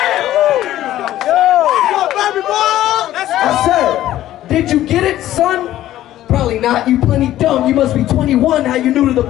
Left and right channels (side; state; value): right; quieter; 13.6 dB